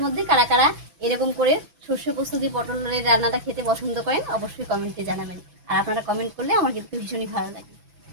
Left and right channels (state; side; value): late; left; 6.1 ms